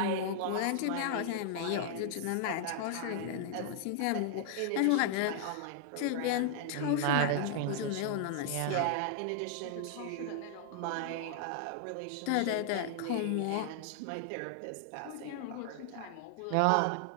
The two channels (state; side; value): different; both; correlation 0.00